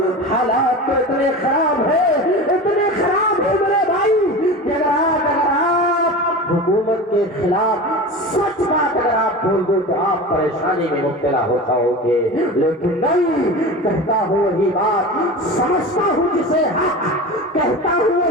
حالات تو اتنے خراب ہے میرے بھائی کہ اگر آپ حکومت کے خلاف سچ بات اگر آپ بول دو تو آپ پریشانی میں مبتلا ہو جاؤ گے، لیکن نہیں، کہتا ہوں وہی بات سمجھتا ہوں جسے حق، کہتا ہوں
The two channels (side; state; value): both; normal; correlation 0.31